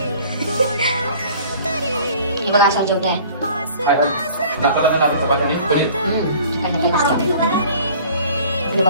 हे बघा असा जेवढा आहे।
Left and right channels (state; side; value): inverted; both; correlation -0.49